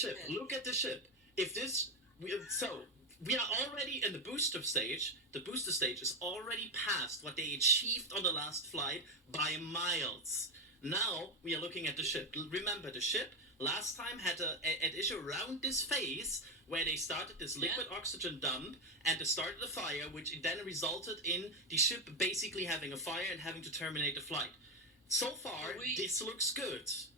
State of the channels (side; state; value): both; normal; correlation 0.10